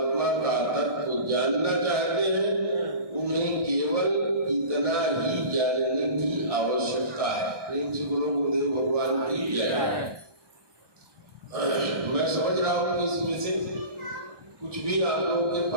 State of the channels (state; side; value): late; left; 1.6 ms